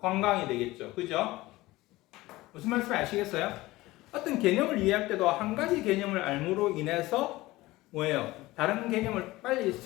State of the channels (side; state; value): right; quieter; 18.9 dB